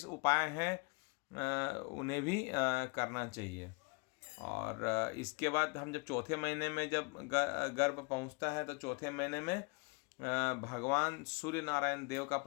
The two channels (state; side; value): quieter; right; 30.9 dB